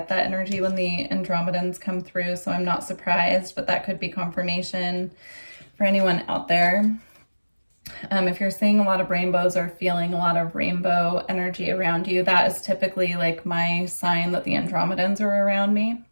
that energy when the Andromedans come through, so I'm not surprised, but that could be confirmation for anyone out there. If you're seeing a lot of rainbows or feeling a lot of rainbow energy around you, that is typically like my sign that the Andromedans are around me.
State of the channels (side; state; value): both; inverted; correlation -1.00